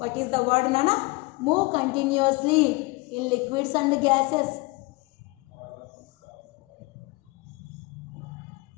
is the word, Nana? Move continuously in liquids and gases.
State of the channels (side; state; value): right; quieter; 24.7 dB